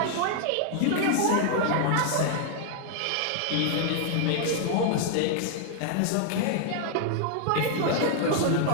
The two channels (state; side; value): different; both; correlation 0.00